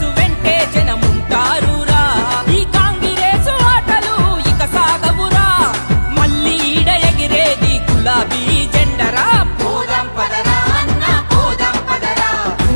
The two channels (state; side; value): inverted; both; correlation -1.00